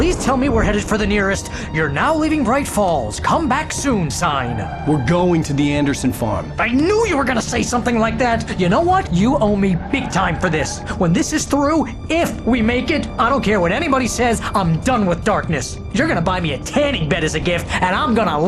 tell me we're headed for the nearest "You're now leaving Bright Falls. Come back soon" sign. We're going to the Anderson farm. I knew you were gonna say something like that. You know what? You owe me big time for this. When this is through, if we make it, I don't care what anybody says, I'm done with darkness. You're gonna buy me a tanning bed as a gift, and I'm gonna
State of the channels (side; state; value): both; identical; correlation 1.00